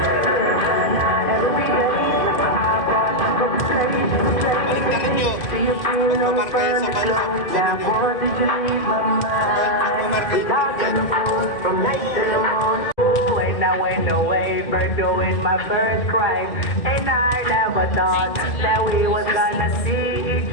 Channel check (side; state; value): right; late; 2.0 ms